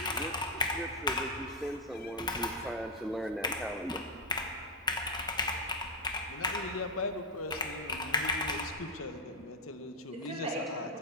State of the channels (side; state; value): both; normal; correlation 0.01